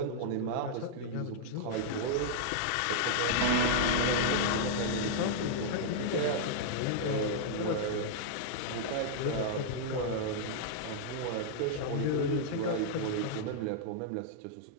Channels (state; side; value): different; both; correlation -0.01